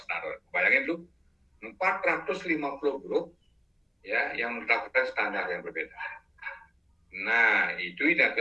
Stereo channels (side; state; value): both; identical; correlation 1.00